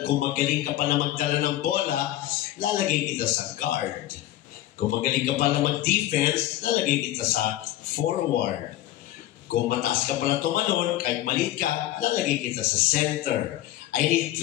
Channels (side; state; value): right; quieter; 14.2 dB